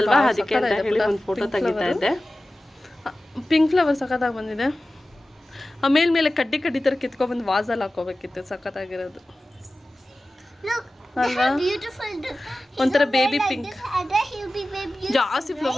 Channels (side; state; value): both; normal; correlation 0.96